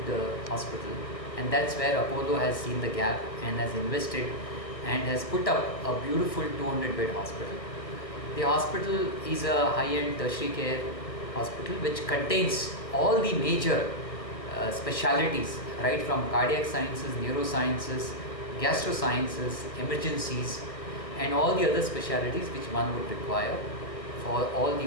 hospital, and that's where Apollo has seen the gap and has invested and has put up a beautiful 200-bed hospital. The hospital is a high-end tertiary care hospital which contains all the major specialities, right from cardiac sciences, neurosciences, gastrosciences, emergencies, and all the other specialities which one would require for all the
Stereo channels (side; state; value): right; late; 1.5 ms